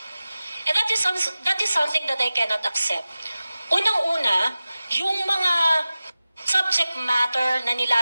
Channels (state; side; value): inverted; both; correlation -0.96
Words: And that is something that I cannot accept. Unang-una, yung mga subject matter na